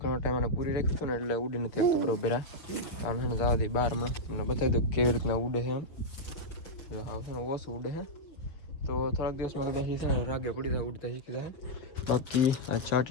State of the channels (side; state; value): right; late; 6.8 ms